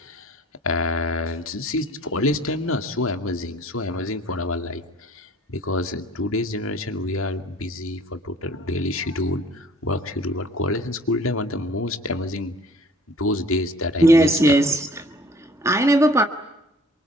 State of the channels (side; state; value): both; normal; correlation 0.50